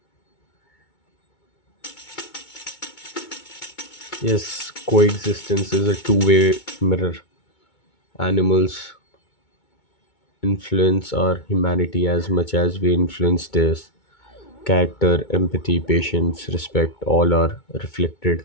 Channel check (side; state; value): right; late; 2.2 ms